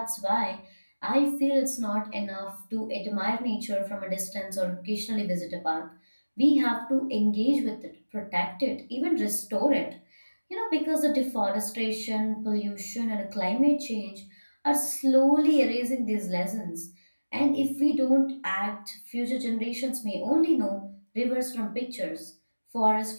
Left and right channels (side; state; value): both; inverted; correlation -1.00